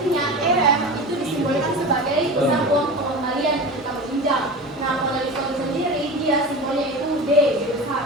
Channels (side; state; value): both; normal; correlation 0.30